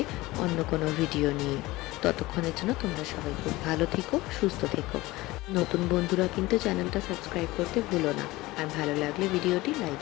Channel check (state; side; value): quieter; right; 19.7 dB